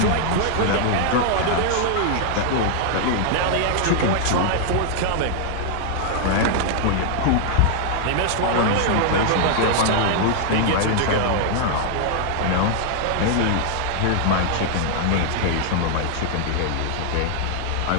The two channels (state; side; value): different; both; correlation 0.00